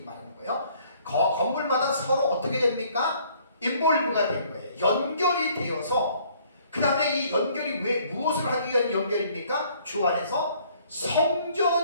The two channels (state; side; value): inverted; both; correlation -0.60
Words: 말하는 거예요. 건물마다 서로 어떻게 됩니까? 인볼브가 된 거예요. 연결이 되어서 그 다음에 이 연결이 왜 무엇을 하기 위한 연결입니까? 주 안에서